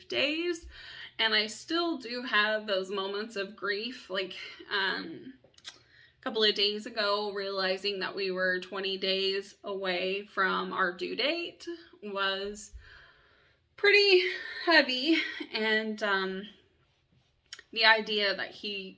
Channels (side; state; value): both; identical; correlation 1.00